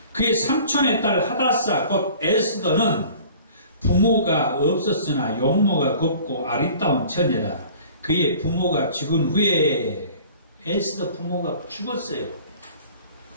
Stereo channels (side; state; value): both; inverted; correlation -0.47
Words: 그의 삼촌의 딸 하다사 곧 에스더는 부모가 없었으나 용모가 곱고 아리따운 처녀라. 그의 부모가 죽은 후에 에스더 부모가 죽었어요.